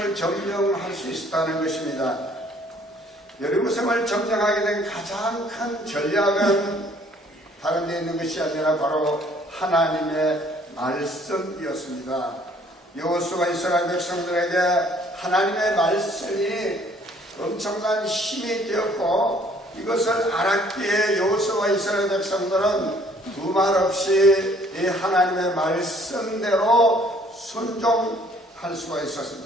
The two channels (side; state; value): both; normal; correlation 0.59